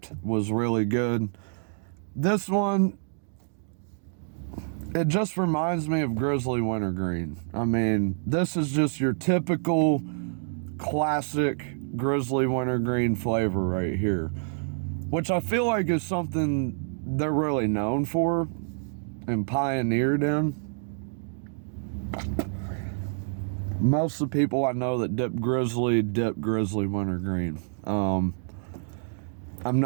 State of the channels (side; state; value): left; silent; digital silence